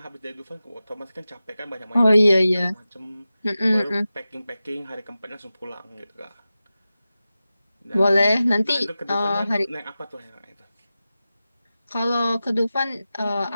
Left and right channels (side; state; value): both; inverted; correlation -0.94